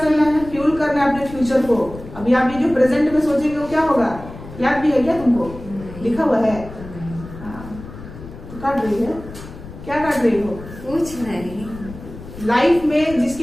है? फ्यूल करना है अपने फ्यूचर को। अभी आप ये जो प्रेजेंट में सोचेंगे वो क्या होगा? याद भी है क्या तुमको? लिखा हुआ है? हाँ, तो काट रही है, क्या काट रही हो? कुछ नहीं। लाइफ में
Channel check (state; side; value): noise; left; rumble, 14 dB below the sound